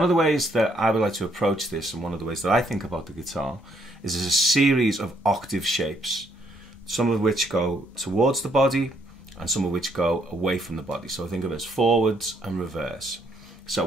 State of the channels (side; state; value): both; normal; correlation 0.70